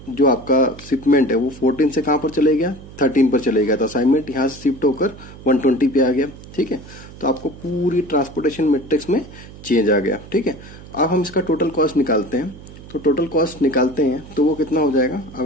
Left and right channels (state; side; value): noise; right; hum, 17 dB below the sound